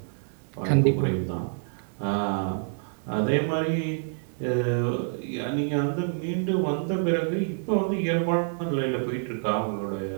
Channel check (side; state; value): left; silent; digital silence